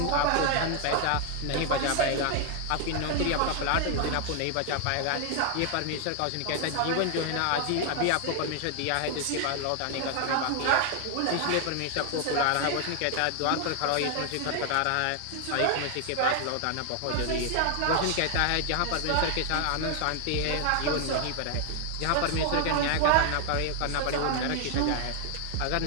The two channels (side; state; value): both; different; correlation 0.00